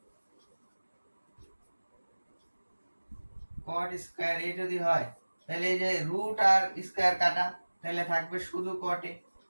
cot² a যদি হয় তাহলে এই যে রুট আর স্কয়ার কাটা, তাহলে থাকবে শুধু cot a।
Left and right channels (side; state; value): both; inverted; correlation -1.00